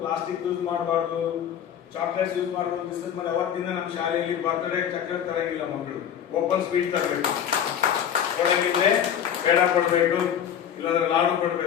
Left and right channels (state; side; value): quieter; right; 9.1 dB